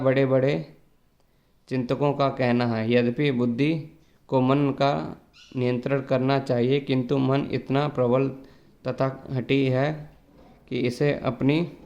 बड़े चिंतकों का कहना है। यद्यपि बुद्धि को मन का नियंत्रण करना चाहिए, किंतु मन इतना प्रबल तथा हठी है कि इसे अपनी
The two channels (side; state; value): both; identical; correlation 1.00